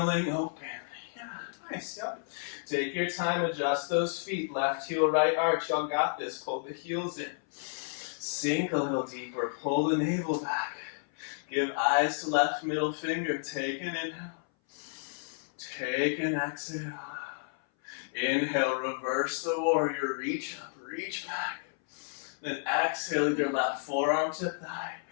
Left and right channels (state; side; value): silent; right; 57 dB below the other